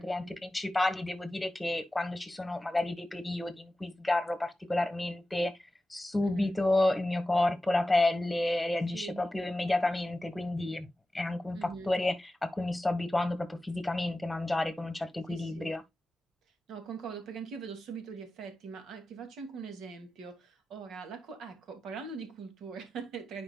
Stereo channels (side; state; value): both; normal; correlation 0.94